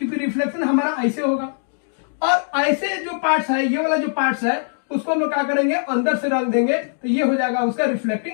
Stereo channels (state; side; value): silent; right; digital silence